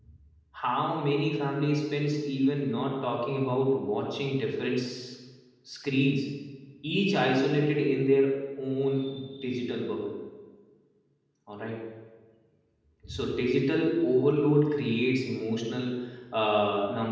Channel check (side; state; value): both; identical; correlation 1.00